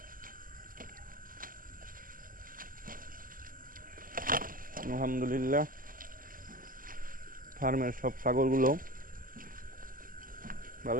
আলহামদুলিল্লাহ, ফার্মের সব ছাগলগুলো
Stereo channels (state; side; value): late; left; 0.41 ms